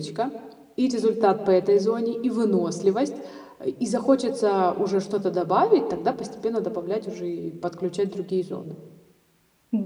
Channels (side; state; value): both; identical; correlation 1.00